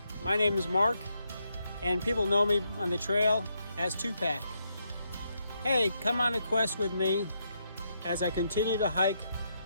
my name is Mark, and people know me on the trail as Tupac. Hey, come on a quest with me as I continue to hike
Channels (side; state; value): both; inverted; correlation -0.79